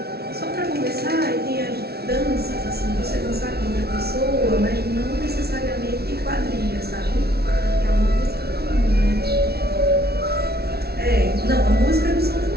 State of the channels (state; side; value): late; left; 0.46 ms